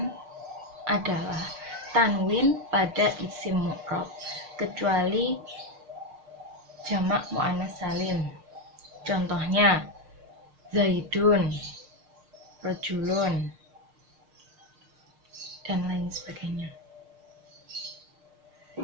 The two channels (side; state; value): left; late; 6.6 ms